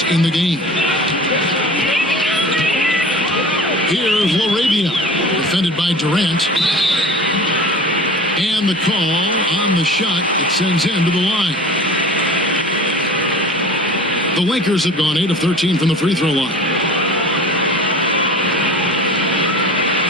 in the game. Here's Laravia, defended by Durant. And the call on the shot that sends him to the line. The Lakers have gone 8 of 13 from the free throw line.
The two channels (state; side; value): normal; both; correlation 0.39